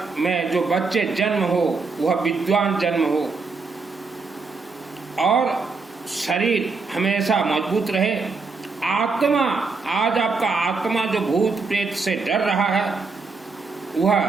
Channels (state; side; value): quieter; left; 4.3 dB